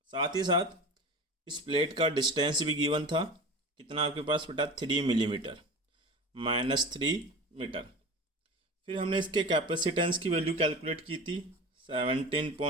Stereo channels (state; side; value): normal; both; correlation 0.32